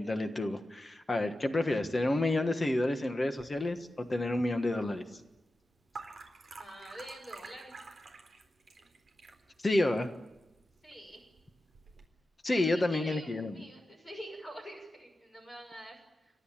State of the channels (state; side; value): normal; both; correlation 0.92